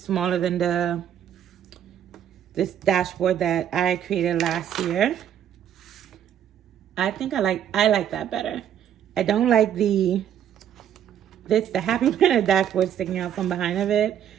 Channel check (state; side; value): quieter; left; 9.9 dB